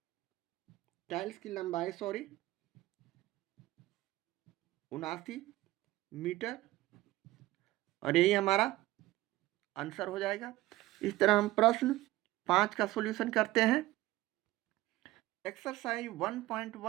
टाइल्स की लंबाई 79 मीटर, और यही हमारा आंसर हो जाएगा। इस तरह हम प्रश्न 5 का सॉल्यूशन करते हैं। एक्सरसाइज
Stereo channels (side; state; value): left; quieter; 17.2 dB